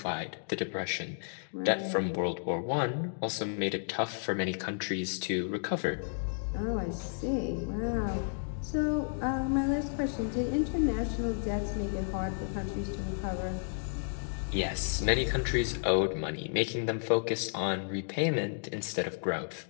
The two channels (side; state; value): right; silent; digital silence